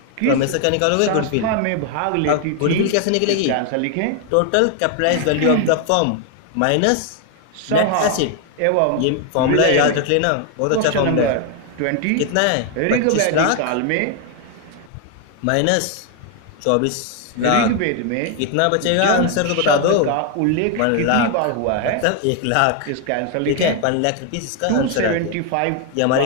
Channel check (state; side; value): different; both; correlation 0.01